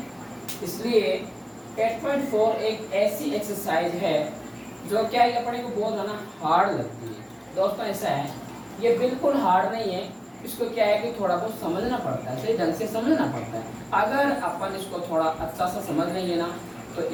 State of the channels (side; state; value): both; identical; correlation 1.00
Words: इसलिए 8.4 एक ऐसी एक्सरसाइज है जो क्या है अपने को बहुत ज़्यादा हार्ड लगती है। दोस्तों, ऐसा है, ये बिल्कुल हार्ड नहीं है। इसको क्या है कि थोड़ा बहुत समझना पड़ता है, सही ढंग से समझना पड़ता है। अगर अपन इसको थोड़ा अच्छा सा समझ लेंगे ना, तो